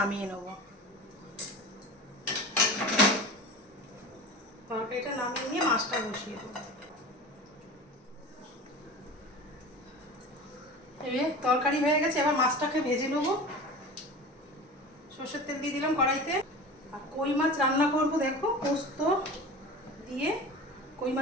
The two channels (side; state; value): both; normal; correlation 0.34